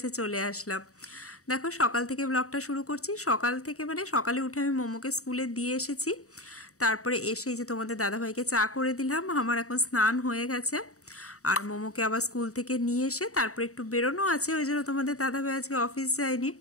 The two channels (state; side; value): late; right; 0.65 ms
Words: চলে আসলাম। দেখো সকাল থেকে ব্লগটা শুরু করছি। সকাল থেকে মানে সকালে উঠে আমি মোমোকে স্কুলে দিয়ে এসেছি। তারপরে এসেই যে তোমাদের দাদাভাইকে চা করে দিলাম। আমার এখন স্নান হয়ে গেছে। আর মোমোকে আবার স্কুল থেকে নিয়ে এসে তারপরে একটু বেরোনো আছে, ওই জন্য তোমাদের দাদাভাই আজকে অফিস যায়নি।